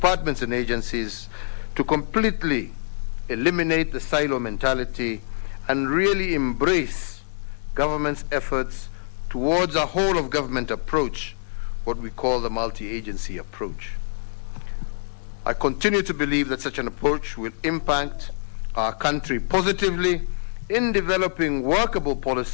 and agencies to completely eliminate the silo mentality and really embrace government's efforts towards a whole-of-government approach, what we call the multi-agency approach. I continue to believe that such an approach will impact our country positively in developing workable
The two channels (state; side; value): silent; right; 57 dB below the other